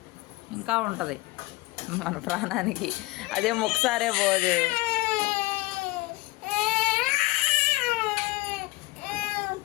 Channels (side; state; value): right; quieter; 21.1 dB